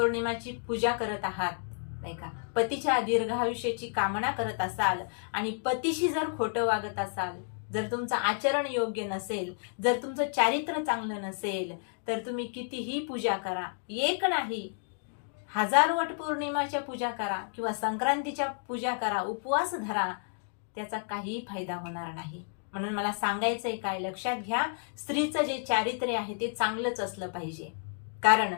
पूजा करत आहात नाही का, पतीच्या दीर्घायुष्याची कामना करत असाल आणि पतीशी जर खोटं वागत असाल, जर तुमचं आचरण योग्य नसेल, जर तुमचं चारित्र्य चांगलं नसेल, तर तुम्ही कितीही पूजा करा, एक नाही 1000 वटपौर्णिमाच्या पूजा करा किंवा संक्रांतीच्या पूजा करा, उपवास धरा, त्याचा काही फायदा होणार नाही. म्हणून मला सांगायचंय काय, लक्षात घ्या, स्त्रीचं जे चारित्र्य आहे ते चांगलंच असलं पाहिजे, कारण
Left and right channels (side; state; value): right; silent; digital silence